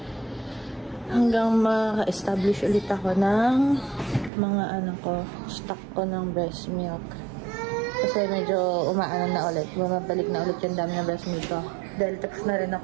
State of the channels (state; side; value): drops out; left; at 4.3 s